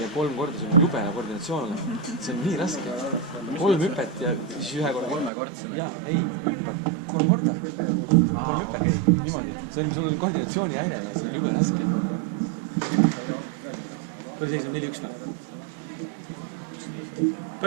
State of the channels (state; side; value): drops out; left; at 5.3 s